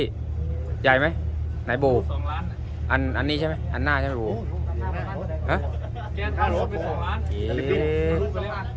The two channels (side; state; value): both; identical; correlation 1.00